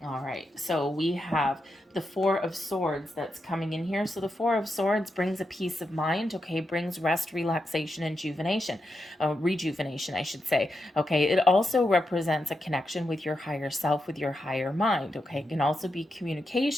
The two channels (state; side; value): normal; both; correlation 0.86